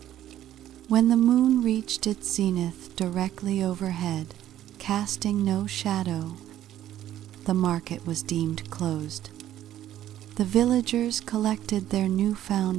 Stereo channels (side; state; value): left; quieter; 12.3 dB